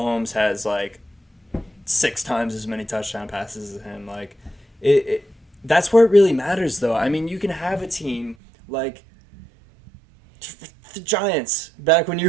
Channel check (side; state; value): left; drops out; at 8.3 s